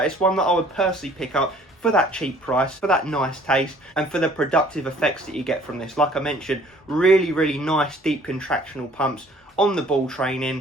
It's one that I would personally pick up for that cheap price, for that nice taste, and for the productive effects that you get from this. Like I mentioned, really, really nice deep contractional pumps on the ball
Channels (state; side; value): normal; both; correlation 0.55